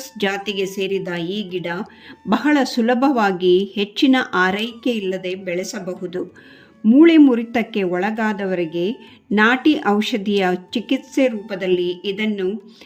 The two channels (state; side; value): identical; both; correlation 1.00